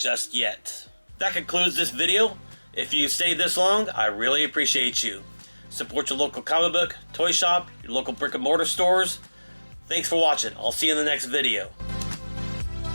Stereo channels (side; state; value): both; inverted; correlation -1.00